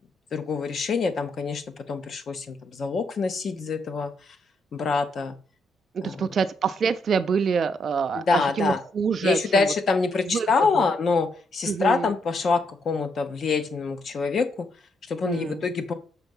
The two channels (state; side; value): normal; both; correlation 0.76